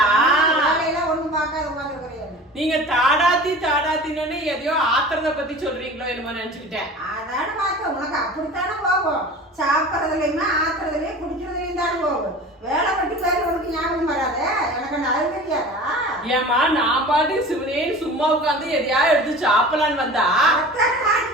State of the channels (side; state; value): both; normal; correlation 0.38